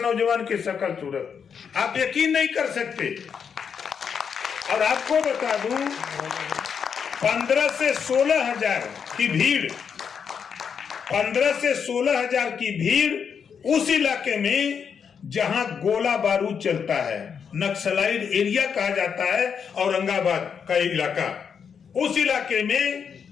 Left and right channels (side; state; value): right; quieter; 6.9 dB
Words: की शक्ल सूरत, आप यकीन नहीं कर सकते। और आपको बता दूं, 15 से 16 हजार की भीड़, 15 से 16 हजार की भीड़ उस इलाके में जहां गोला बारूद चलता है, नक्सलाइट एरिया कहा जाता है, औरंगाबाद का इलाका, उस इलाके में